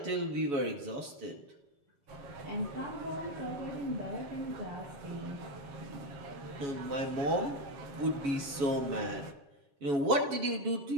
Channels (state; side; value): late; left; 7.1 ms